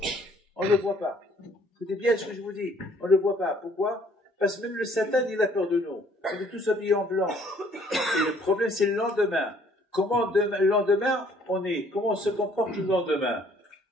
On ne le voit pas. Écoutez bien ce que je vous dis. On ne le voit pas. Pourquoi? Parce que même le Satan, il a peur de nous. On est tous habillés en blanc. Et le problème, c'est le lendemain. Comment le lendemain, comment on se comporte le lendemain?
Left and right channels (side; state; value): both; normal; correlation 0.60